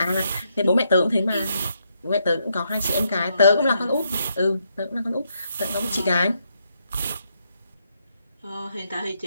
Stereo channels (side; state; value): both; inverted; correlation -0.77